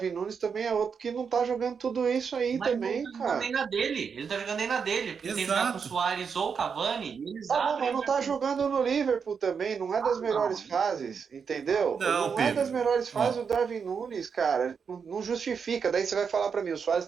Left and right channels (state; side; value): quieter; left; 6.2 dB